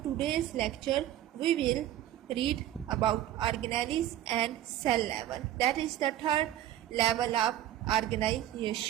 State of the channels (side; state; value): left; quieter; 12.6 dB